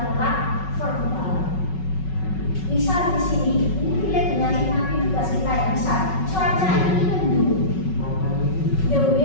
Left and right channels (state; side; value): late; right; 5.4 ms